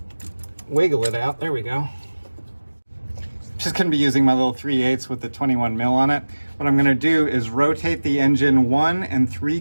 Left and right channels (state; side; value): inverted; both; correlation -1.00